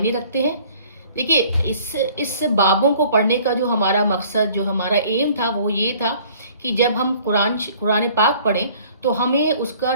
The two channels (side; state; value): both; inverted; correlation -0.54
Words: रखते हैं। देखिए इस बाबों को पढ़ने का जो हमारा मकसद जो हमारा एम था वो ये था कि जब हम कुरान पाक पढ़ें तो हमें उसका